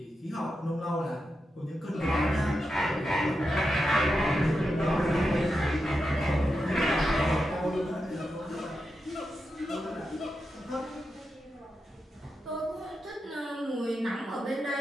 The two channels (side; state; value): both; normal; correlation 0.88